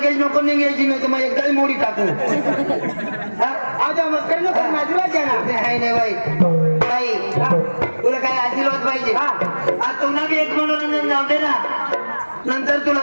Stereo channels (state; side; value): inverted; both; correlation -1.00